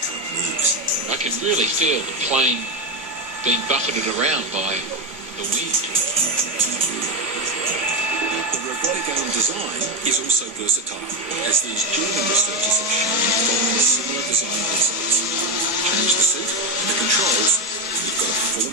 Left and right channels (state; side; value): normal; both; correlation 0.12